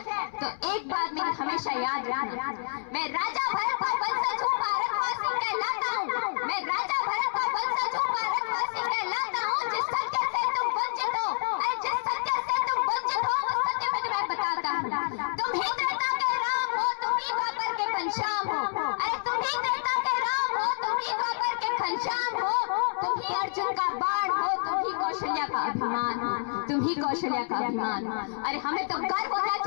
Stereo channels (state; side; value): silent; right; 59 dB below the other